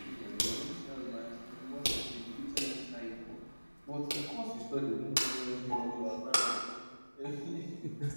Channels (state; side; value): inverted; both; correlation -1.00